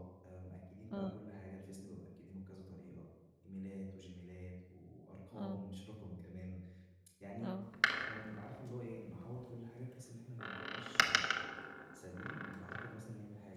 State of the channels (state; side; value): identical; both; correlation 1.00